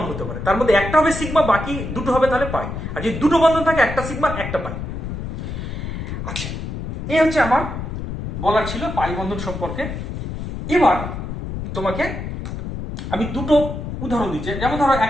হতে পারে, তার মধ্যে একটা হবে সিগমা, বাকি 2টো হবে তাহলে পাই। আর যদি 2টো বন্ধন থাকে, একটা সিগমা একটা পাই। আচ্ছা, এই হচ্ছে আমার বলার ছিল পাই বন্ধন সম্পর্কে। এবার তোমাকে আমি দুটো উদাহরণ দিচ্ছি। যেমন ধরো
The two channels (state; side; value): noise; left; rumble, 6 dB below the sound